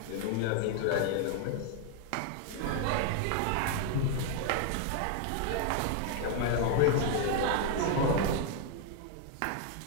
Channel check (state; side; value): different; both; correlation 0.00